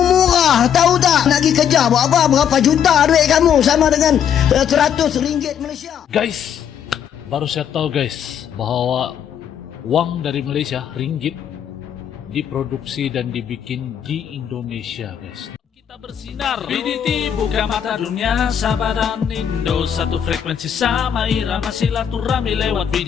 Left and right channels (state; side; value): quieter; right; 8.8 dB